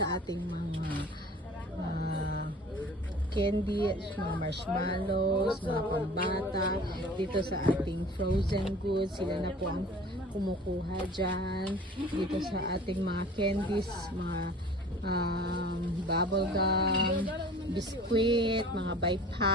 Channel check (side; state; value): both; normal; correlation 0.44